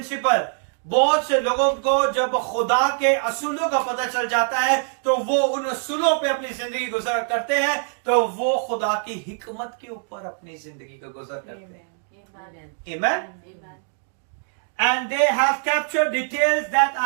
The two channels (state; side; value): silent; left; 63 dB below the other